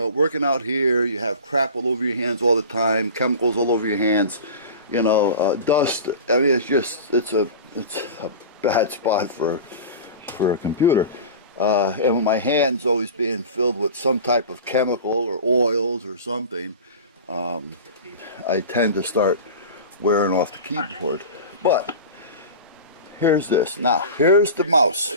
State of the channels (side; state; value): both; inverted; correlation -0.33